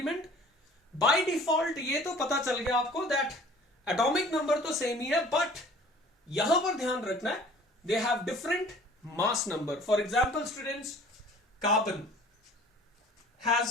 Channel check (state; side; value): normal; both; correlation 0.49